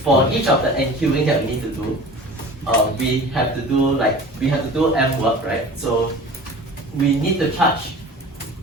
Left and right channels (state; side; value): normal; both; correlation 0.40